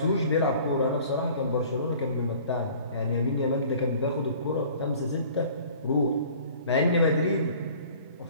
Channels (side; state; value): both; inverted; correlation -0.49